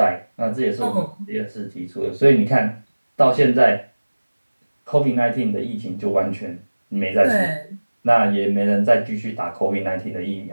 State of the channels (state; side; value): inverted; both; correlation -1.00